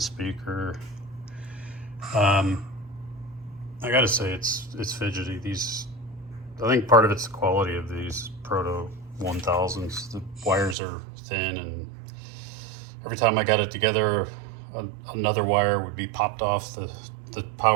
speaker. I gotta say it's fidgety. I think part of it's the quality of these Proto 1000s. The wires are thin, and every time I got it together, another wire would be popped off the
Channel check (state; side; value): drops out; left; at 10.8 s